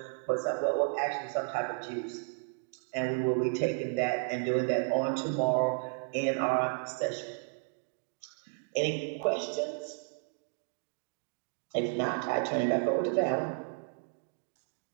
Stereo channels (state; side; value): silent; left; 56 dB below the other